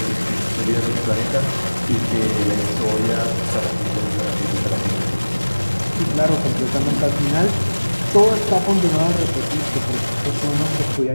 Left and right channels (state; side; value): inverted; both; correlation -1.00